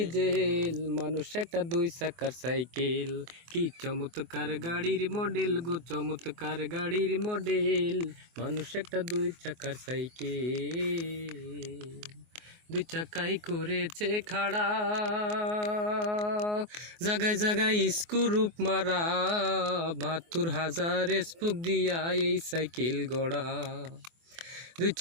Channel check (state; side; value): late; left; 24 ms